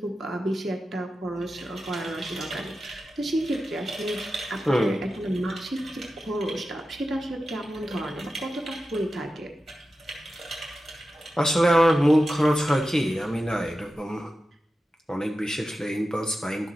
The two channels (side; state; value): both; normal; correlation 0.92